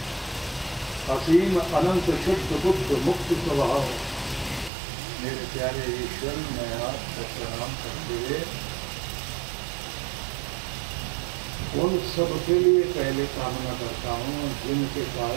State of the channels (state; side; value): drops out; left; at 4.7 s